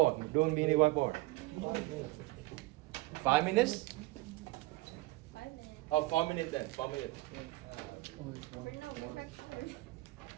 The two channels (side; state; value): left; quieter; 21.2 dB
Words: Doing mini whiteboard. 5 minutes? 5 minutes. Oh, 4 minutes then. 4 minutes. We're no, we're back